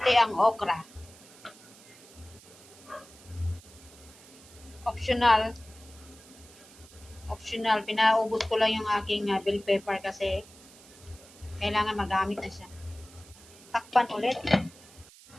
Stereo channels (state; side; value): noise; right; hiss, 22 dB below the sound